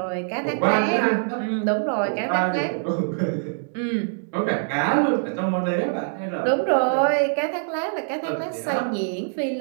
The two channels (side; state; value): left; silent; digital silence